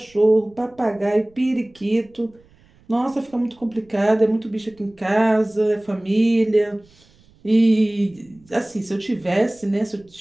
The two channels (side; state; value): right; noise; rumble, 30 dB below the sound